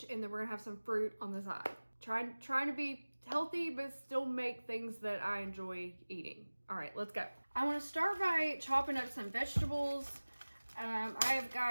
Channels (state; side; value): inverted; both; correlation -1.00